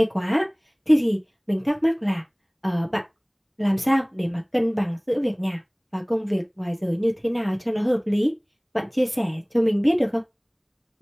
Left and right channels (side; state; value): both; identical; correlation 1.00